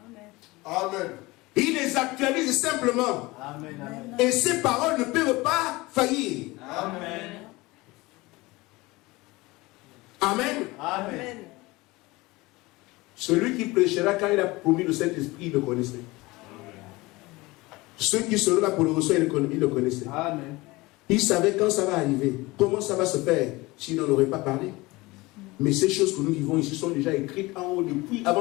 Amen. Il les actualise simplement. Amen. Amen. Et ces paroles ne peuvent pas faillir. Amen. Amen. Amen. Celui qui prêchera quand il a promis le Saint-Esprit, il le connaissait. Ceux qui seront là pour le recevoir, il le connaissait. Amen. Il savait quand ça va arriver, comment ça va se faire, s'il n'en aurait pas parlé. Mais ces choses que nous vivons ici sont déjà écrites en haut depuis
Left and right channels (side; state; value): right; quieter; 21.7 dB